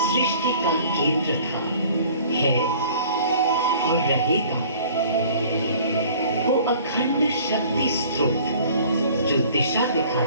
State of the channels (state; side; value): inverted; both; correlation -0.50